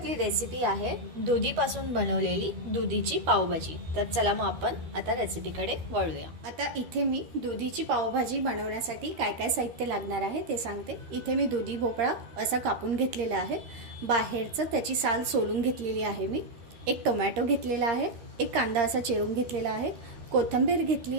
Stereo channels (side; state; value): left; late; 13 ms